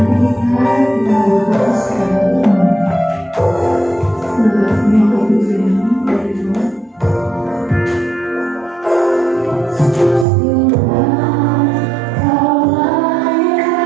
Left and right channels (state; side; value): drops out; left; at 10.2 s